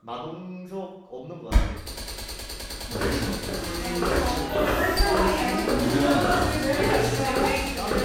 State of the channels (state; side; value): identical; both; correlation 1.00